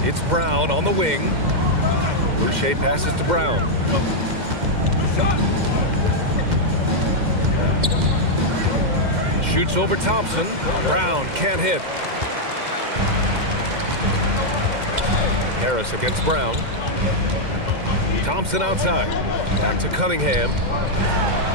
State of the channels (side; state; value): left; late; 2.1 ms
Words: It's Brown on the wing. Boucher passes to Brown. Shoots over Thompson. Brown can't hit. Harris against Brown. Thompson outside. Back to Cunningham.